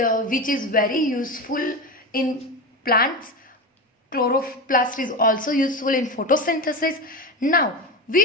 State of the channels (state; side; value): normal; both; correlation 0.21